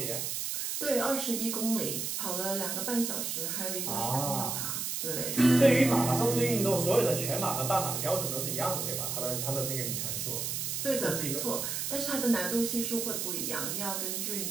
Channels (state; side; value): noise; right; hiss, 2 dB below the sound